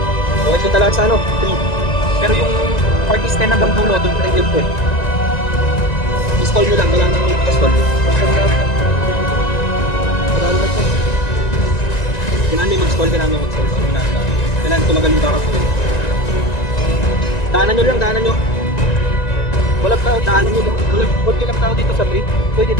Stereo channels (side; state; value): right; late; 1.9 ms